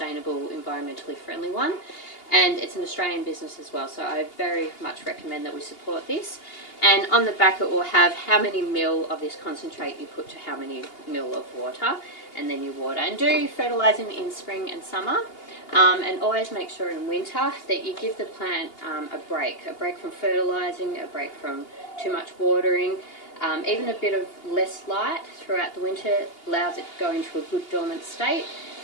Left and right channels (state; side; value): late; right; 2.8 ms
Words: environmentally friendly one, and it's an Australian business as well, so I very much recommend that we support this. And on the back it will have how many mil of this concentrate you put to how many mil of water, and then you water. And do fertilising in spring and summer, and always make sure in winter that you give the plant a break from fertilising, a break from too much watering. Even a bit of less light throughout the winter allows it to go into a good dormant state,